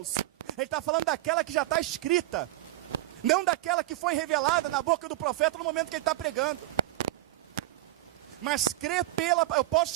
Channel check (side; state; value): left; quieter; 16.4 dB